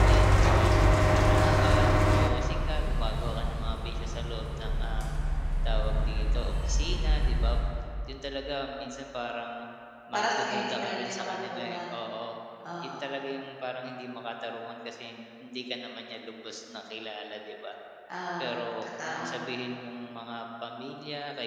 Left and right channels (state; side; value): identical; both; correlation 1.00